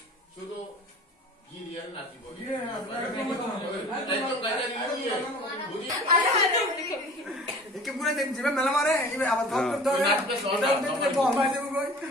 শুধু গিরিয়ান নাচি বলি একে পুরো দেন জিবে মেলা মারে এবে আবার ধর ধর এটা তো আমার দেব কই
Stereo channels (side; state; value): both; normal; correlation 0.43